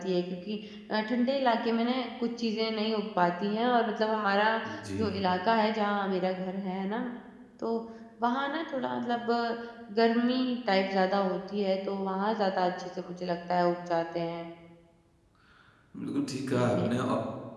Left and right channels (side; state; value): both; identical; correlation 1.00